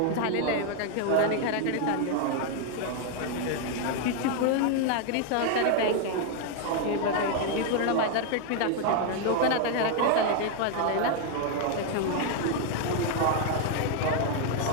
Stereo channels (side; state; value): both; different; correlation 0.00